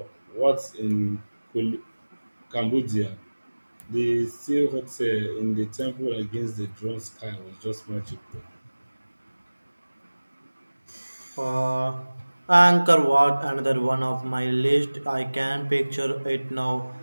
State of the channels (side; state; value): both; inverted; correlation -1.00